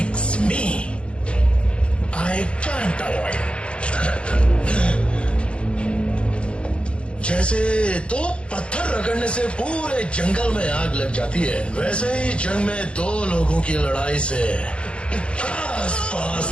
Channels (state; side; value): late; right; 0.058 ms